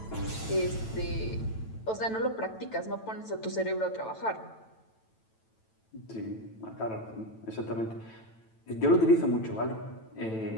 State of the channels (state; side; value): late; right; 9.1 ms